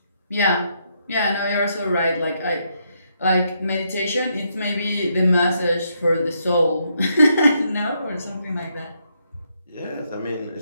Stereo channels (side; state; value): both; inverted; correlation -0.76